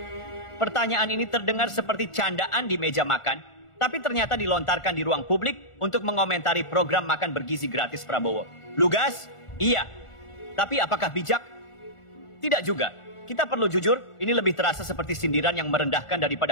Pertanyaan ini terdengar seperti candaan di meja makan, tapi ternyata dilontarkan di ruang publik untuk mengomentari program makan bergizi gratis Prabowo. Lugas? Iya. Tapi apakah bijak? Tidak juga. Kita perlu jujur, ini lebih terasa seperti sindiran yang merendahkan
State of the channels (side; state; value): right; late; 1.4 ms